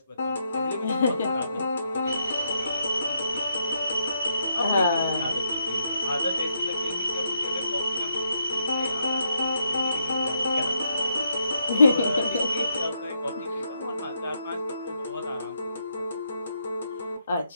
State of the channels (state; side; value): inverted; both; correlation -0.78